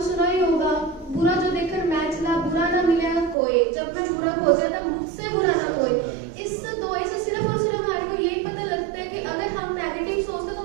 सुना ही होगा, बुरा जो देखकर मैं चला बुरा ना मिलेगा कोई, जब मैं बुरा हो जाता मुझसे बुरा ना कोई। इस दोहे से सिर्फ और सिर्फ हमारे को यही पता लगता है कि अगर हम नेगेटिव सोचते तो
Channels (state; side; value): drops out; left; at 3.4 s